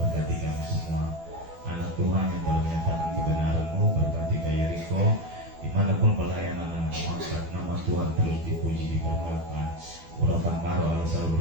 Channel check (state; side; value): late; left; 12 ms